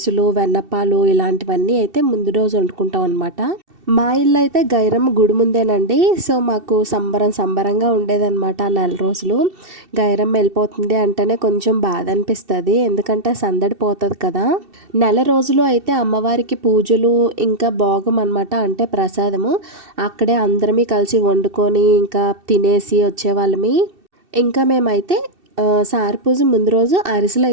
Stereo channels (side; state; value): left; late; 2.7 ms